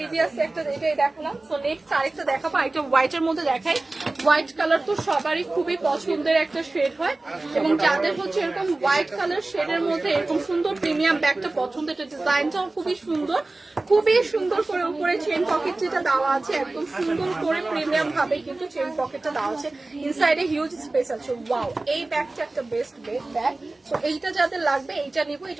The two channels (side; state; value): left; quieter; 3.1 dB